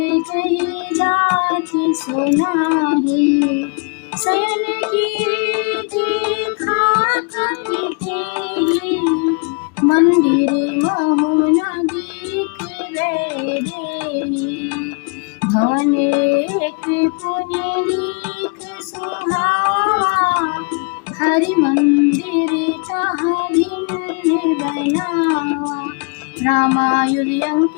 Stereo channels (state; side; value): quieter; right; 34.4 dB